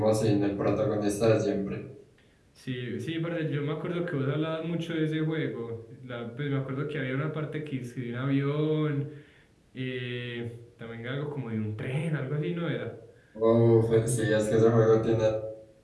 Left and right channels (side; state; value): both; identical; correlation 1.00